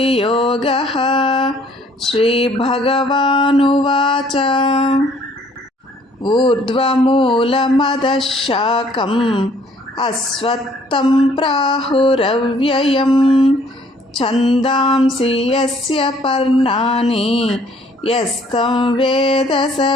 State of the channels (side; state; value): both; normal; correlation 0.60